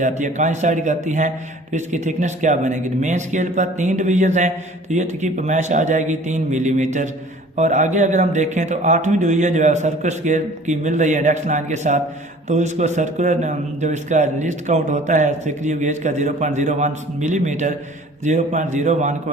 है, कोइंसाइड करती हैं। तो इसकी थिकनेस क्या बनेगी, मेन स्केल पर 3 डिवीजन हैं तो ये की पैमाइश आ जाएगी 3 मिलीमीटर। और आगे अगर हम देखें तो 8वीं डिवीजन जो है सर्कुलर स्केल की मिल रही है इंडेक्स लाइन के साथ, तो इसको सर्कुलर जो इसका लिस्ट काउंट होता है स्क्रू गेज का 0.01 मिलीमीटर, 0.01 को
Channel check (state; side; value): normal; both; correlation 0.49